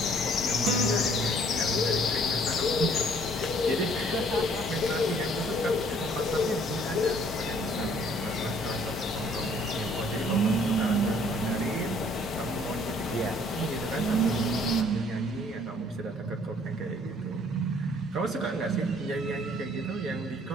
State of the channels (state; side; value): normal; both; correlation 0.59